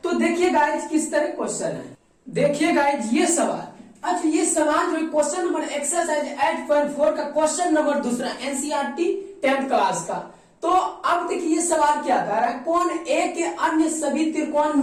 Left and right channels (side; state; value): both; identical; correlation 1.00